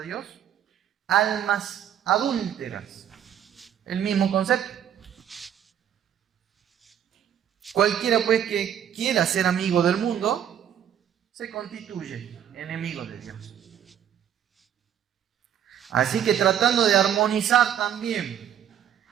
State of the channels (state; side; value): quieter; left; 9.7 dB